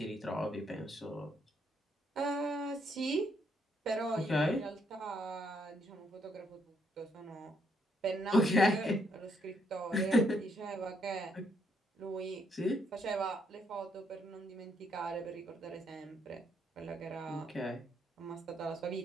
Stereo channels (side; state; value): both; normal; correlation 0.73